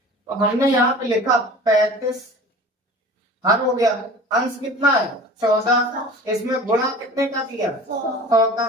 हमने यहाँ पे लिखा 35 हर हो गया, अंश कितना है 14, इसमें गुणा कितने का किया 100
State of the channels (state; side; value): normal; both; correlation 0.41